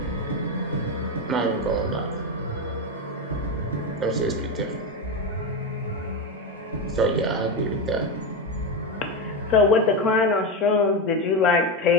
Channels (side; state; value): both; normal; correlation 0.12